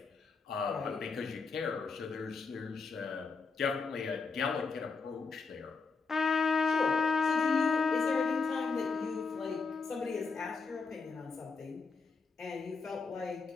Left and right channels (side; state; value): right; quieter; 4.6 dB